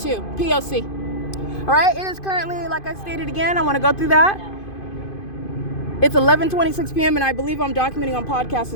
P.O.C. All right, it is currently, like I stated again, I want to go through that. It's 11:26 p.m. and I believe I'm documenting on podcast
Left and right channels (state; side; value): late; right; 2.5 ms